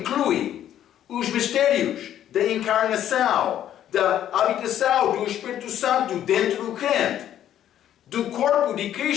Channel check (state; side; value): quieter; right; 11.1 dB